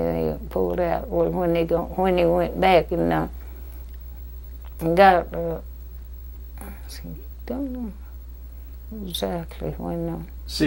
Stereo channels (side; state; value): both; identical; correlation 1.00